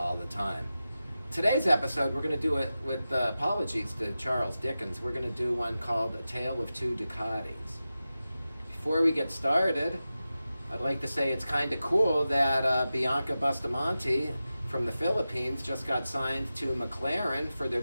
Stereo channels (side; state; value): both; inverted; correlation -0.93